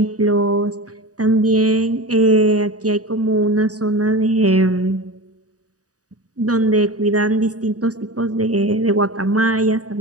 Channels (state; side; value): late; left; 0.67 ms